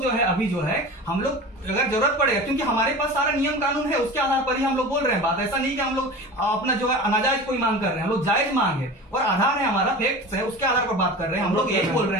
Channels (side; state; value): both; normal; correlation 0.34